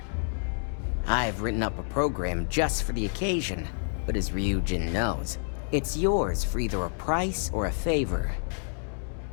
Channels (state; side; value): silent; right; 59 dB below the other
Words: I've written up a program just for the occasion, but as Ryujin knows, it's yours for either a price or a favor.